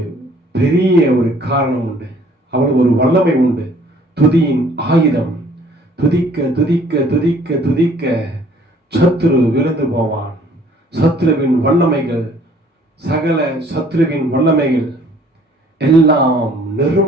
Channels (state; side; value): normal; both; correlation 0.57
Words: பெரிய ஒரு காரணம் உண்டு, அவ்வளவு ஒரு வல்லமை உண்டு. துதியின் ஆயுதம். துதிக்க துதிக்க துதிக்க துதிக்க சத்துரு விழுந்து போவான். சத்துருவின் வல்லமைகள், சகல சத்துருவின் வல்லமைகள் எல்லாம்